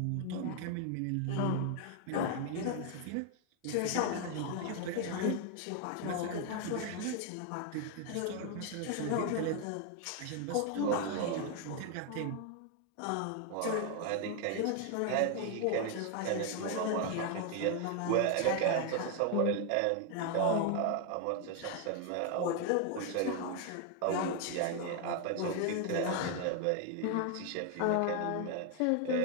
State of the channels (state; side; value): different; both; correlation 0.01